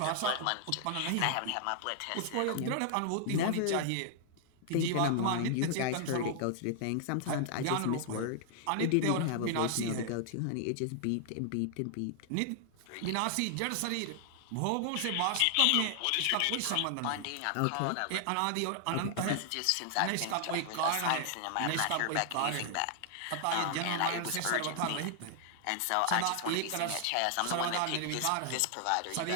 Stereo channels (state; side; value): different; both; correlation 0.00